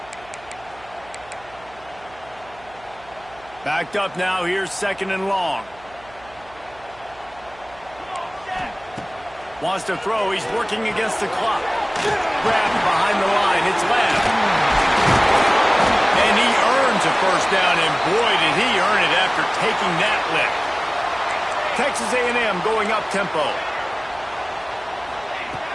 Backed up now. Here's second and long. Wants to throw. He's working against the clock. Grabbed behind the line. It's left. And he earns a first down, and boy, did he earn it after taking that lick. Texas A&M going up tempo.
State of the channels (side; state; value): right; noise; hum, 24 dB below the sound